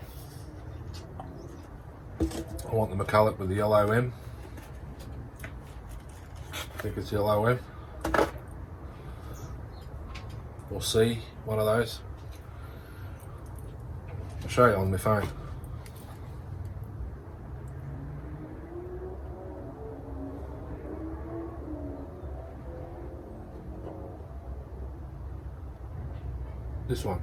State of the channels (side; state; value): both; identical; correlation 1.00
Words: I want the McCulloch with the yellow M. I think it's yellow M. Or C, one of those. I'll show you on my phone. This one.